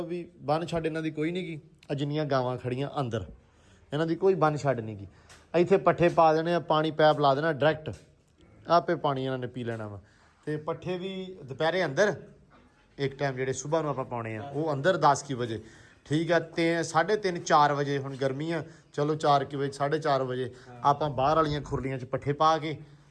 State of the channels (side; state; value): both; identical; correlation 1.00